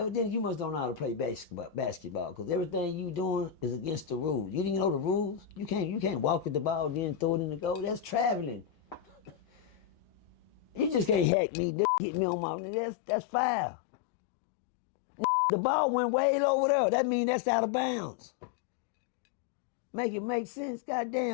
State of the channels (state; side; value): drops out; right; at 11.3 s